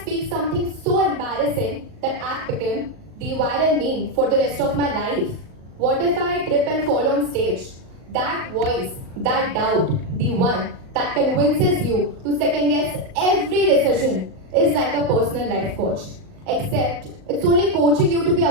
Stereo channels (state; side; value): late; left; 38 ms